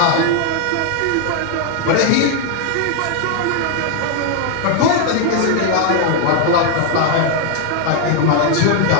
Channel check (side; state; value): both; different; correlation 0.00